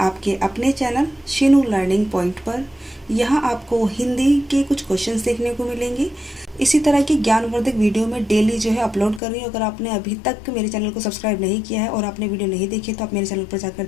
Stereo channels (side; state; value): right; drops out; at 9.2 s